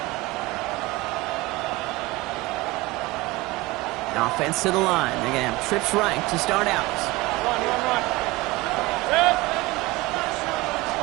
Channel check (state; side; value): quieter; left; 21.0 dB